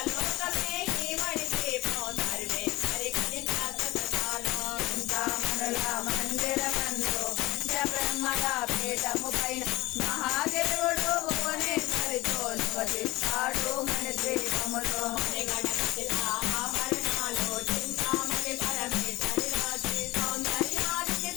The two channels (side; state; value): right; quieter; 20.0 dB